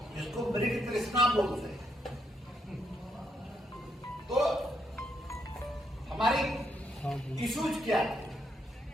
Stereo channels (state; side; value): normal; both; correlation 0.77